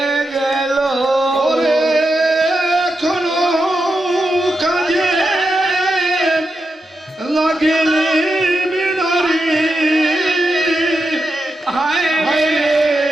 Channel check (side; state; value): both; normal; correlation 0.87